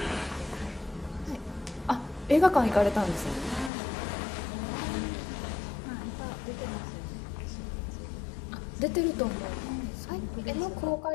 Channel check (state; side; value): drops out; right; at 3.7 s